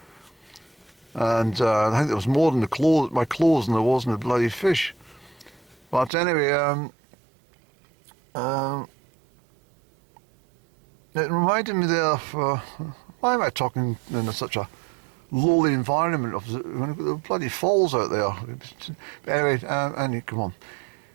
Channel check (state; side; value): drops out; left; at 6.1 s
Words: And I think there was more in my clothes than there was in the bloody fish. But anyway, it reminded me there of, why am I talking in such a lowly environment of the bloody falls out there? But anyway, Annie, come on.